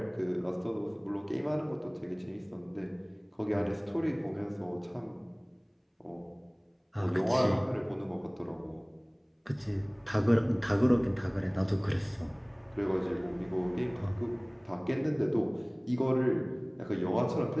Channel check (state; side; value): identical; both; correlation 1.00